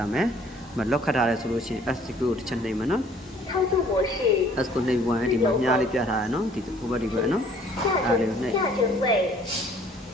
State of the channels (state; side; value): normal; both; correlation 0.57